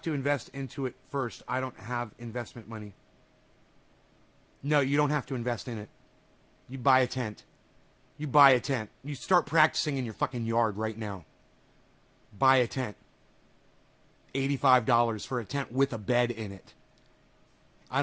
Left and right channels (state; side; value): identical; both; correlation 1.00